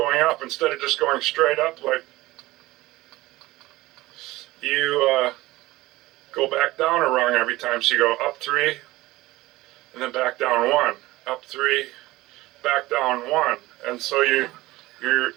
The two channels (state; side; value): quieter; left; 18.8 dB